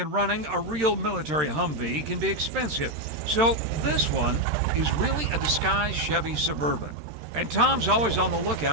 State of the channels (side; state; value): left; late; 13 ms